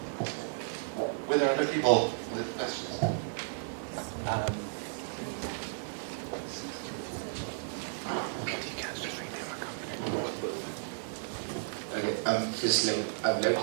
Were there other people with questions? Firstly, I would like to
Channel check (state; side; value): silent; left; digital silence